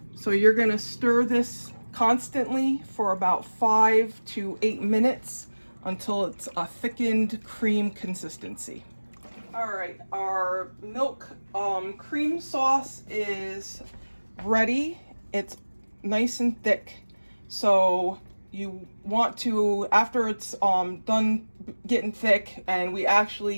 So you're gonna stir this constantly for about 5 to 8 minutes until it's a thickened cream consistency. All right, our milk cream sauce is ready. It's nice and thick. So you want to, after it's done getting thick, and we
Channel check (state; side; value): inverted; both; correlation -1.00